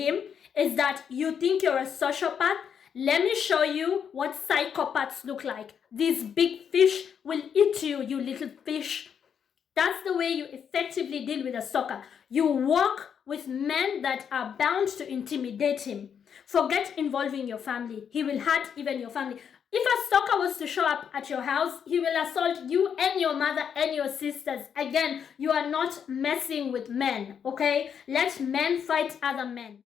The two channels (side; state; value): right; quieter; 7.6 dB